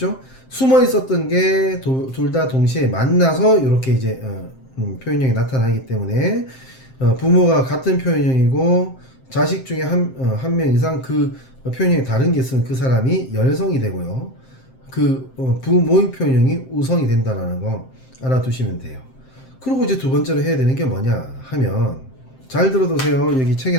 숨어 있었던 게 둘 다 동시에 만나서 이렇게 이제 표현형이 나타나기 때문에 부모가 같은 표현형이고 자식 중에 한 명 이상 그 표현형이 다른 게 있으면 그 사람이 열성이 되고요. 그 부모의 표현형이 우성이 된다는 거 알아두시면 돼요. 그리고 이제 두 번째로 해야 되는 게 뭐냐 하면 잘 들어두세요. 여기 책에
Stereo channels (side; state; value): right; late; 7.7 ms